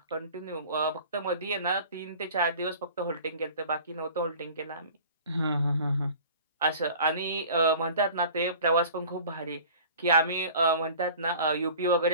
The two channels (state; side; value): inverted; both; correlation -0.44